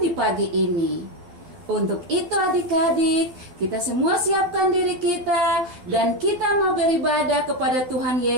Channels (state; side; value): late; left; 12 ms